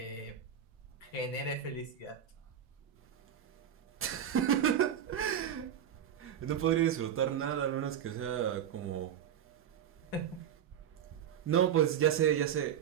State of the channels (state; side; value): quieter; left; 9.3 dB